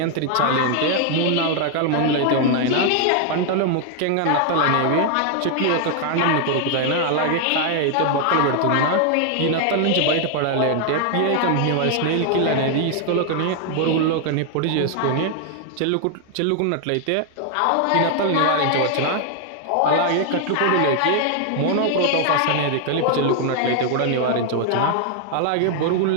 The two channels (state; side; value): different; both; correlation 0.00